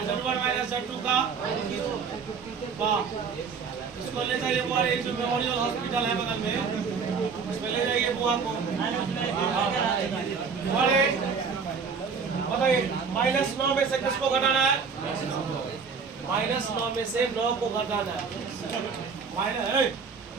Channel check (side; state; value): left; quieter; 5.6 dB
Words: z1 माइनस z2 का। इसको ले जाइए बुआ, ये जो मेमोरियल हॉस्पिटल है बगल में, इसमें ले जाइए बुआ को। बताइए -9 में से किसको घटाना है? -9 में से 9 को घटाना है।